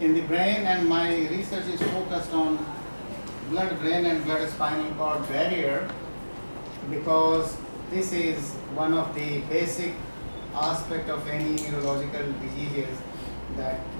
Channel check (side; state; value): both; inverted; correlation -1.00